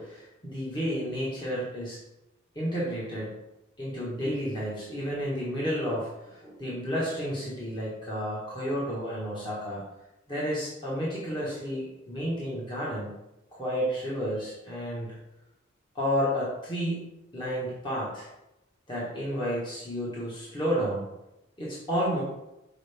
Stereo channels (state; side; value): normal; both; correlation 0.48